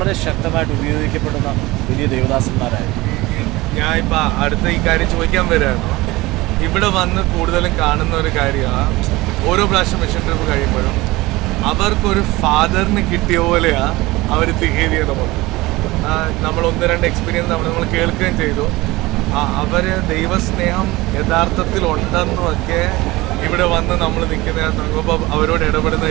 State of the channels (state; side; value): quieter; left; 20.4 dB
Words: ശക്തമായിട്ട് ഉപയോഗിക്കപ്പെടുന്ന വലിയ ദേവദാസന്മാരായിരുന്നു. ഞാൻ ഇപ്പം അടുത്ത ഈ കാര്യം ചോദിക്കാൻ വരികയാണ്. ഇവിടെ വന്ന് കൂടുതലും കാണുന്ന ഒരു കാര്യമാണ്, ഓരോ പ്രാവശ്യം മിഷൻ ട്രിപ്പ് കഴിയുമ്പോഴും അവർക്കൊരു ഫാദറിന് കിട്ടിയ പോലെയാണ് അവർ ബിഹേവ് ചെയ്ത് പോകുന്നത്. നമ്മൾ 1-2 എക്സ്പീരിയൻസ് നമ്മൾ കേൾക്കുകയും ചെയ്തു. അവർ ദൈവസ്നേഹം യഥാർത്ഥത്തിൽ ഉണ്ടെന്നുമൊക്കെ ഇവിടെ വന്ന് നമ്മൾ നിൽക്കുന്ന അവരോട് ഇടപെടുന്ന